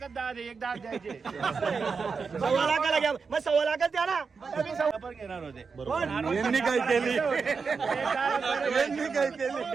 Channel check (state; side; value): quieter; left; 5.2 dB